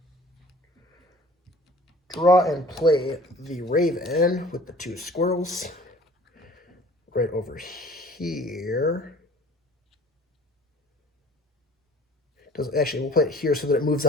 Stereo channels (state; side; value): normal; both; correlation 0.48